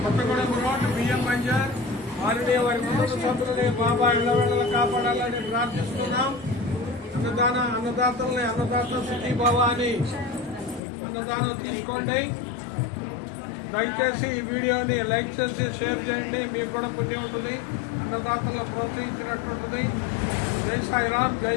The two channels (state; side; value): drops out; right; at 10.8 s